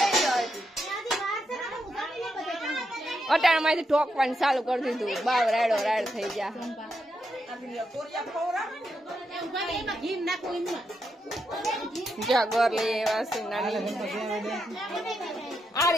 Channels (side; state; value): both; normal; correlation 0.83